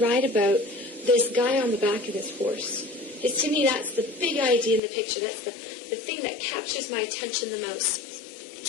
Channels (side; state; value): right; drops out; at 4.8 s